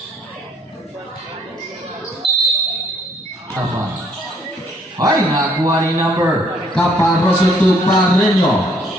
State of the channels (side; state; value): both; normal; correlation 0.64